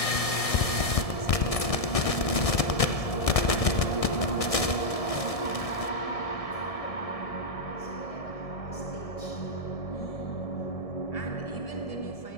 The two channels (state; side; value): late; right; 1.7 ms